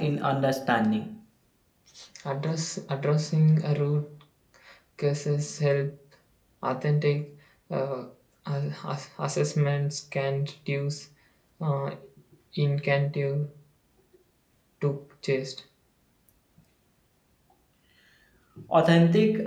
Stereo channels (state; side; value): identical; both; correlation 1.00